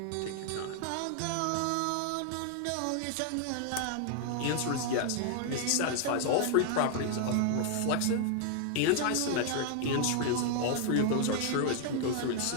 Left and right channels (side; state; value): both; different; correlation 0.00